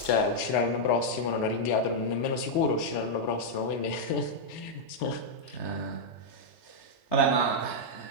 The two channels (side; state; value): right; late; 4.0 ms